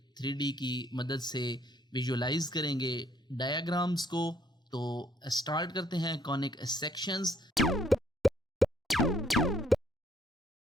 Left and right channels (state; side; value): normal; both; correlation 0.65